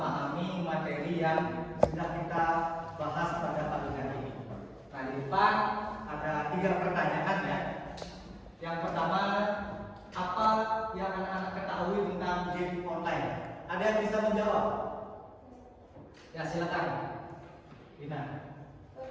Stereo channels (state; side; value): identical; both; correlation 1.00